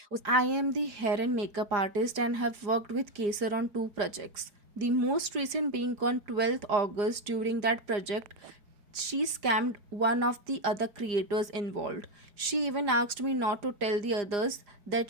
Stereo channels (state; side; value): late; left; 4.9 ms